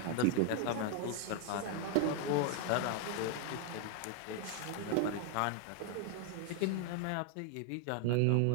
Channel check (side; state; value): both; different; correlation 0.00